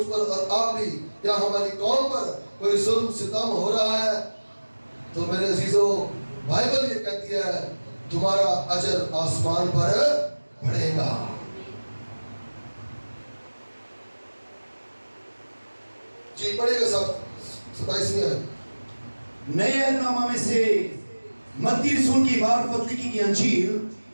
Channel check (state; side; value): inverted; both; correlation -1.00